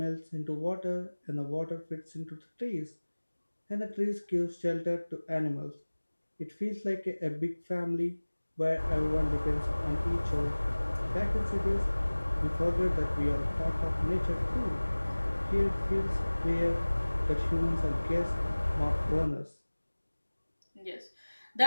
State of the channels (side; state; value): both; inverted; correlation -1.00